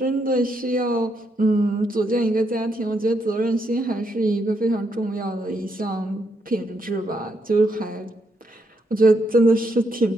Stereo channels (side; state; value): both; normal; correlation 0.78